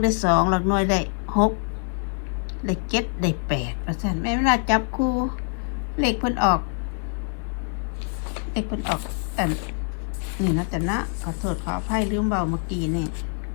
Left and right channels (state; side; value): silent; right; 56 dB below the other